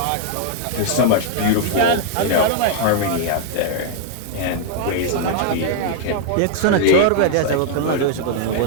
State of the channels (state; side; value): different; both; correlation 0.00